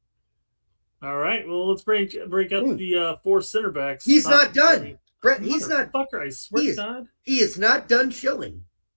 all right. Well, let's break out the 4 center backs. He's not done, Brett. He's not. Fucker, I swear to God, he is not done shilling.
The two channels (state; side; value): inverted; both; correlation -1.00